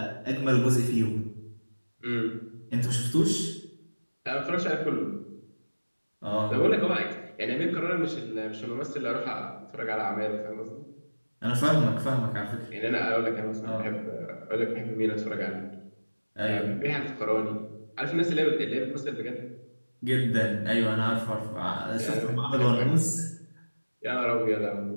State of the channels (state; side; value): inverted; both; correlation -1.00